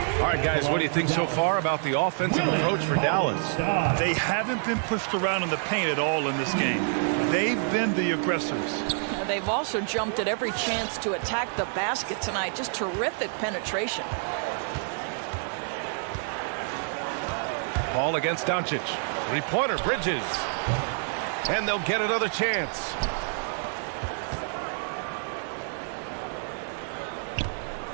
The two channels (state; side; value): silent; left; 60 dB below the other